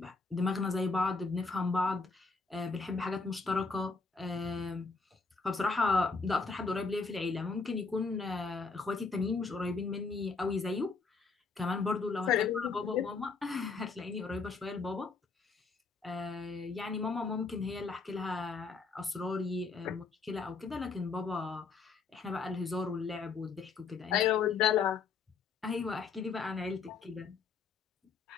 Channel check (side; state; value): right; quieter; 4.6 dB